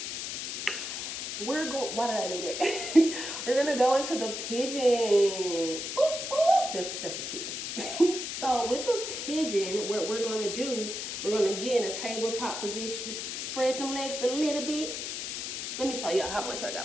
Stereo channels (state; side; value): noise; left; hiss, 5 dB below the sound